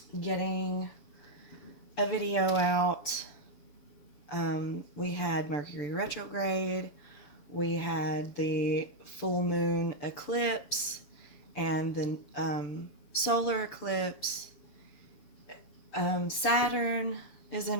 getting a video out. We had Mercury retrograde. We had the full moon eclipse and the solar eclipse. Saturn is in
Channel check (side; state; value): right; late; 6.9 ms